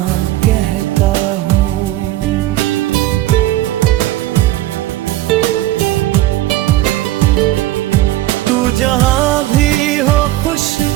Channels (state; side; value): quieter; left; 15.6 dB